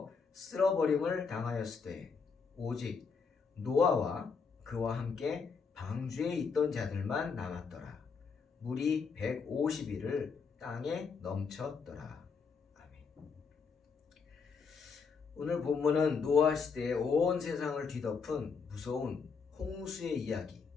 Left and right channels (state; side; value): quieter; right; 5.4 dB